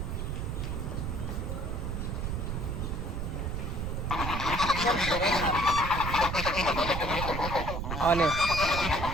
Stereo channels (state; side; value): noise; right; rumble, 3 dB below the sound